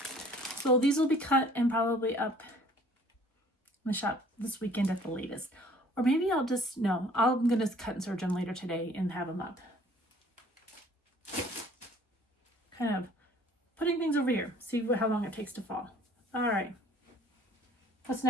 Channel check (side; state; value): both; normal; correlation 0.54